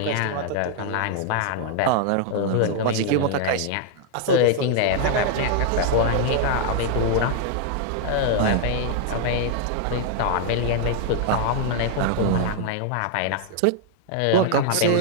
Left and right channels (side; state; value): both; different; correlation 0.00